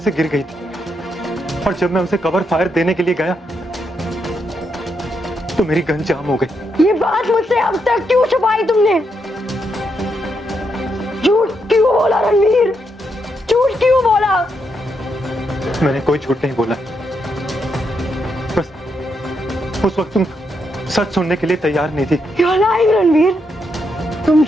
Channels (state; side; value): normal; both; correlation 0.80